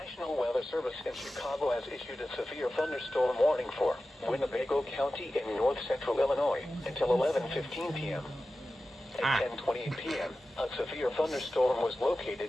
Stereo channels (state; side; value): normal; both; correlation 0.94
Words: Weather Service in Chicago has issued a severe thunderstorm warning for Winnebago County in north-central Illinois until 11:15 p.m. At 10:28 p.m., a severe thunderstorm was